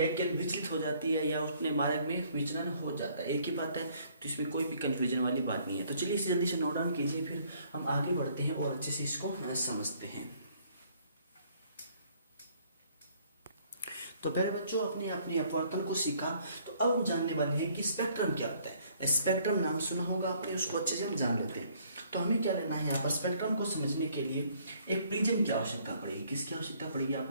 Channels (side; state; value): both; inverted; correlation -0.63